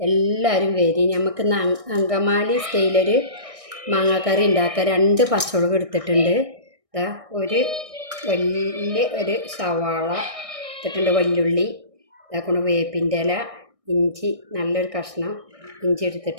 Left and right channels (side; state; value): left; late; 1.6 ms